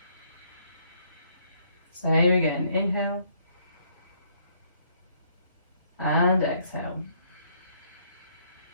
Same again, inhale. And exhale.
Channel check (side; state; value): both; inverted; correlation -0.67